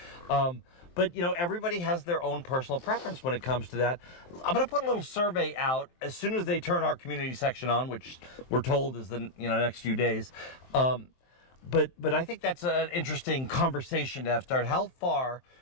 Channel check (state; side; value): late; right; 23 ms